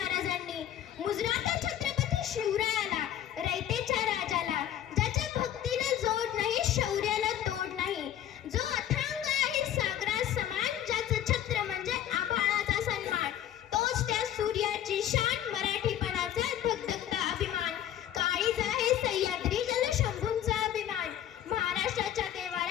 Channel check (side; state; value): right; quieter; 11.2 dB